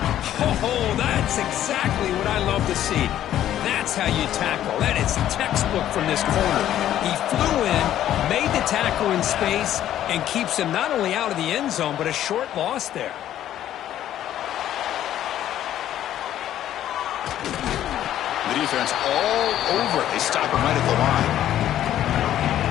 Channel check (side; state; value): right; quieter; 11.8 dB